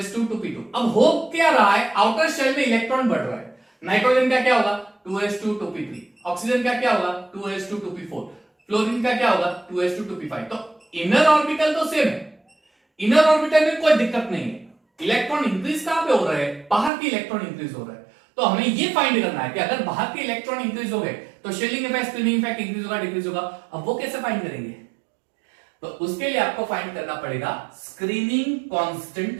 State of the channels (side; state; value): left; drops out; at 16.9 s